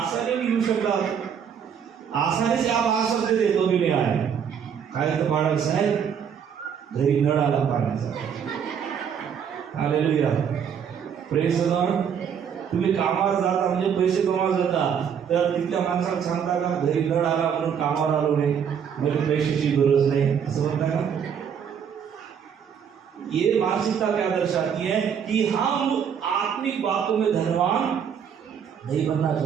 घेऊ शकता, आसानी से आप आ सकते थे, तो भी नहीं आए. काय तर बाळा साहेब घरी नळ आला पाण्याचा. हालेलुया. Praise the Lord. तुम्ही कामावर जाता म्हणजे पैसे कमावर जाता, तर तिथल्या माणसाला सांगता का घरी नळ आला म्हणून कामावर आलो नाही, मला पैशाची गरज नाही, असं म्हणता का? ये मानसिकता क्या दर्शाती है कि हम आत्मिक बातों में धनवान नहीं बनना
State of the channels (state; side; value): quieter; left; 7.7 dB